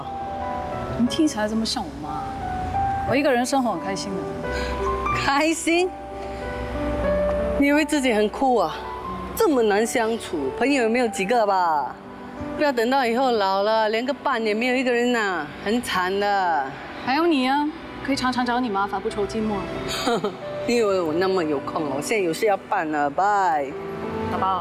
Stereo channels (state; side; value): identical; both; correlation 1.00